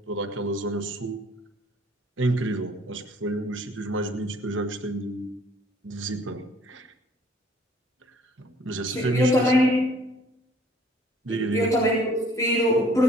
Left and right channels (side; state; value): both; normal; correlation 0.56